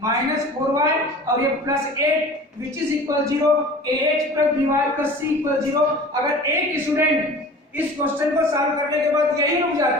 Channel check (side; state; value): both; normal; correlation 0.41